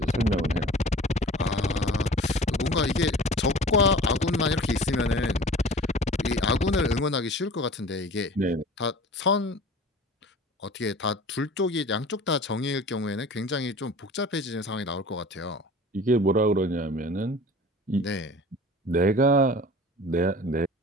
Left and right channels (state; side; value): normal; both; correlation 0.42